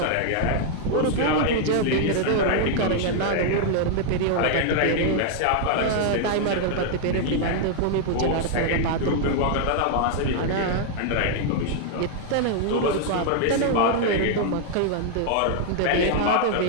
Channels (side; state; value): both; different; correlation 0.00